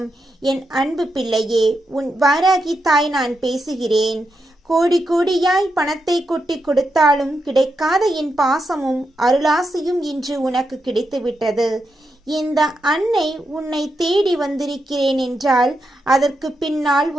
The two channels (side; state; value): both; normal; correlation 0.85